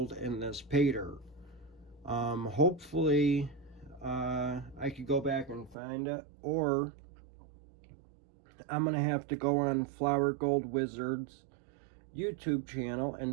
in this Paydirt. Hopefully I could go back and find it, or I'm gonna have to go on Flower Gold Wizard's YouTube channel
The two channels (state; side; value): drops out; left; at 5.8 s